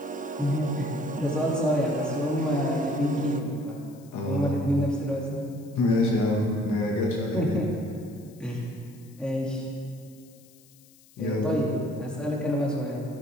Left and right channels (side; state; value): left; noise; hiss, 27 dB below the sound